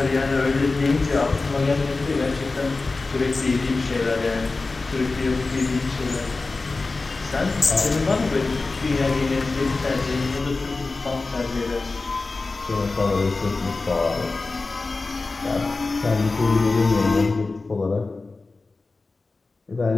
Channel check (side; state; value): right; quieter; 3.7 dB